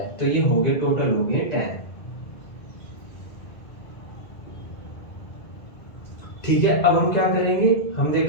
तो ये हो गए टोटल हो गए 10, ठीक है। अब हम क्या करेंगे, हम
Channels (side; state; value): right; late; 1.9 ms